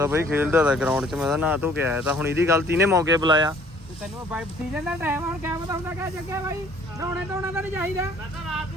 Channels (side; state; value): both; normal; correlation 0.57